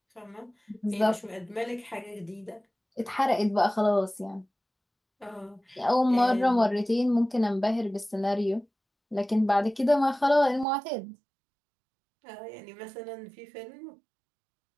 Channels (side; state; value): left; drops out; at 10.7 s